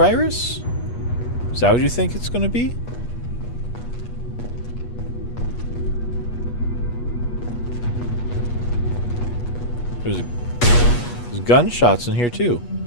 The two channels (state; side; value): late; right; 8.3 ms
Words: Is that what you think it's going to be? There's gunshots in here too.